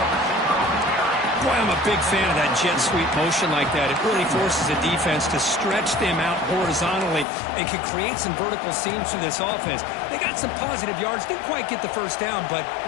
Boy, I'm a big fan of that jet sweep motion like that. It really forces a defense to stretch them out horizontally and can create some vertical seams for this offense. They got some positive yards. Didn't quite get the first down, but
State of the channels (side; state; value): right; drops out; at 7.2 s